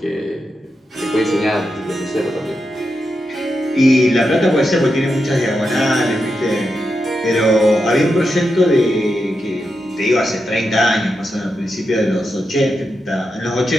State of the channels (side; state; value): both; normal; correlation 0.87